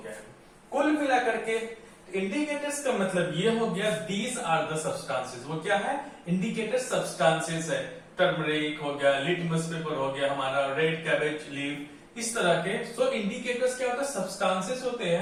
कुल मिला करके इंडिकेटर्स का मतलब ये हो गया, दीज आर द सब्सटेंसेस। वो क्या है, इंडिकेटर सब्सटेंसेस है। टर्मरिक हो गया, लिटमस पेपर हो गया हमारा, रेड कैबेज लीफ, इस तरह के। सो इंडिकेटर्स क्या होता है, सब्सटेंसेस होते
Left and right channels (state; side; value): identical; both; correlation 1.00